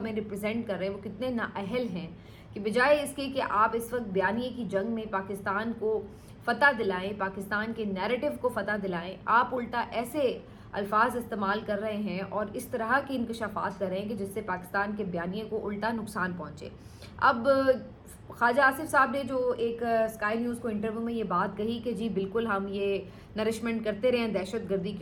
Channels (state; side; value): identical; both; correlation 1.00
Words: ریپرزینٹ کر رہے ہیں وہ کتنے نااہل ہیں کہ بجائے اس کے کہ آپ اس وقت بیانیے کی جنگ میں پاکستان کو فتح دلائیں، پاکستان کے نیریٹو کو فتح دلائیں، آپ الٹا ایسے الفاظ استعمال کر رہے ہیں اور اس طرح کے انکشافات کر رہے ہیں کہ جس سے پاکستان کے بیانیے کو الٹا نقصان پہنچے۔ اب خواجہ آصف صاحب نے جو ایک اسکائی نیوز کو انٹرویو میں یہ بات کہی کہ جی بالکل ہم یہ نرشمنٹ کرتے رہے ہیں دہشت گردی